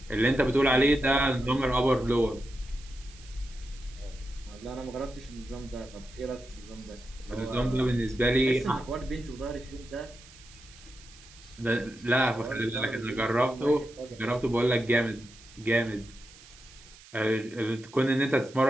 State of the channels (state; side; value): noise; right; hiss, 21 dB below the sound